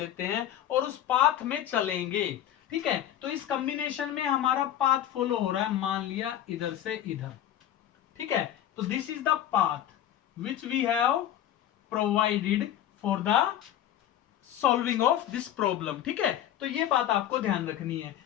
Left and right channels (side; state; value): right; quieter; 11.4 dB